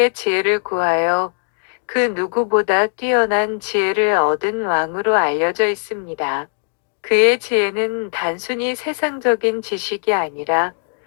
지혜를 구하여 그 누구보다 뛰어난 지혜를 얻은 왕으로 알려져 있습니다. 그의 지혜는 단순히 세상적인 지식이 아니라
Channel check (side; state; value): right; silent; 60 dB below the other